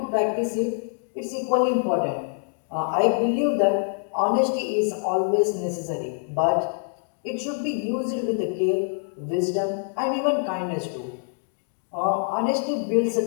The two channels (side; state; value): right; silent; 62 dB below the other